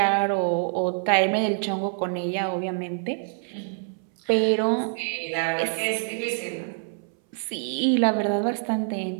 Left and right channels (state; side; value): silent; left; 61 dB below the other